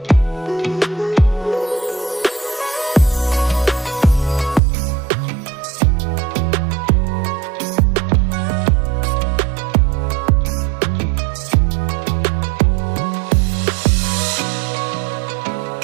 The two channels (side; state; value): left; drops out; at 4.6 s